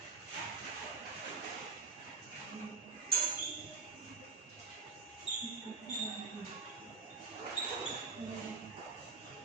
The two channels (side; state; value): left; quieter; 4.6 dB